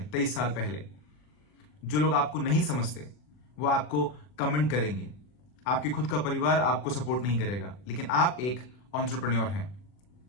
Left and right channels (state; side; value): late; right; 40 ms